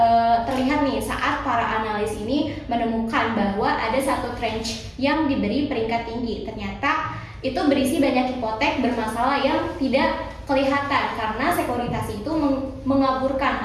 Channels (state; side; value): identical; both; correlation 1.00